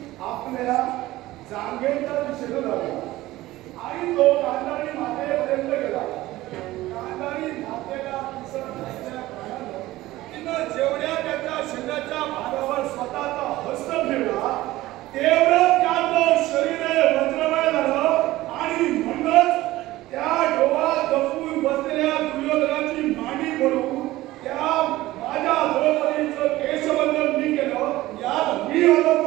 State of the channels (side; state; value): left; quieter; 17.1 dB